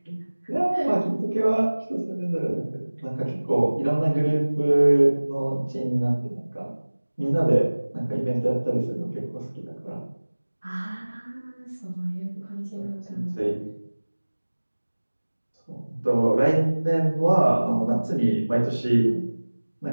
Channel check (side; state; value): both; inverted; correlation -1.00